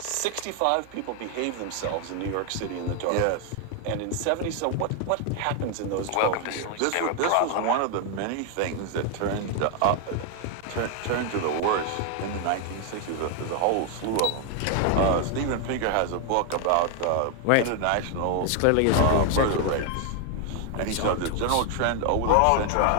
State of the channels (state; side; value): different; both; correlation 0.00